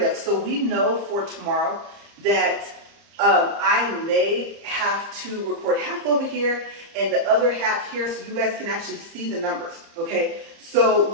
of. So we know for tomorrow that I may have to record half over here and the other half here so you guys can actually see the numbers. Okay, so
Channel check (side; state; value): left; late; 30 ms